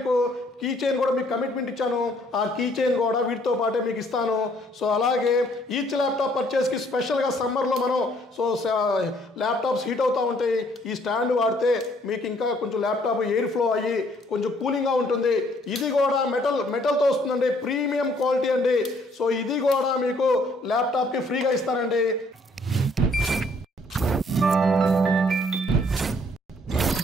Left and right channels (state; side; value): normal; both; correlation 0.64